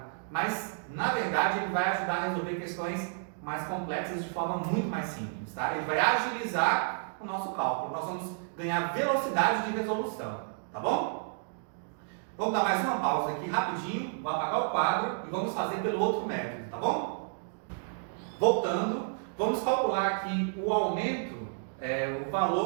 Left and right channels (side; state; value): left; silent; digital silence